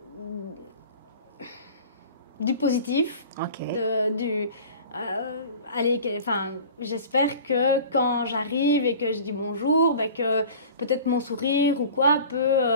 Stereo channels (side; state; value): both; inverted; correlation -0.41